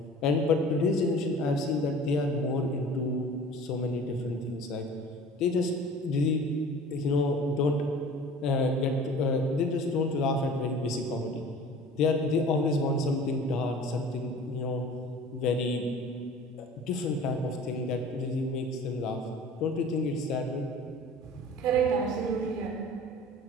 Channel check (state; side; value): normal; both; correlation 0.43